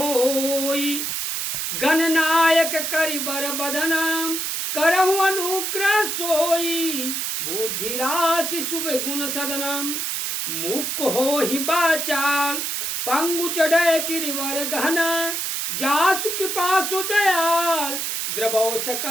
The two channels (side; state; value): right; noise; hiss, 2 dB below the sound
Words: गणनायक करिबर बदन, करहु अनुग्रह सोई, बुद्धि राशि शुभ गुण सदनम। मुख हो ही बाचाल, पंगु चढ़े गिरिवर गहना, जासु कृपा सु दयाल, द्रवौ